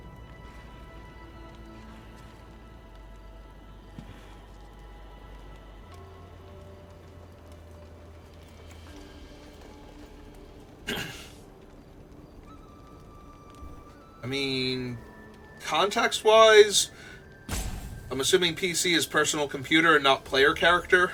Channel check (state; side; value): identical; both; correlation 1.00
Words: I mean, context-wise, I'm assuming PC is personal computer and not player character.